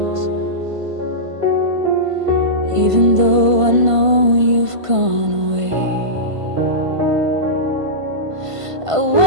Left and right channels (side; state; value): left; late; 1.5 ms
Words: even though I know you've gone away. I